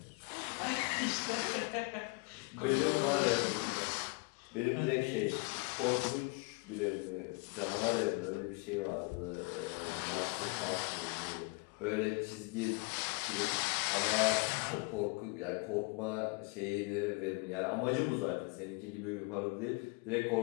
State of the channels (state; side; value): quieter; right; 30.7 dB